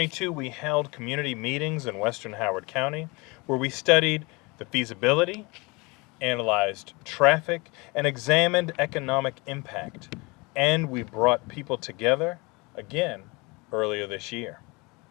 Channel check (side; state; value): right; quieter; 26.5 dB